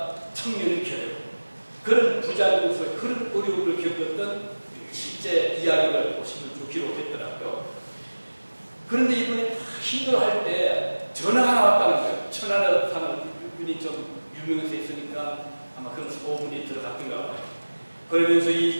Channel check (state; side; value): inverted; both; correlation -1.00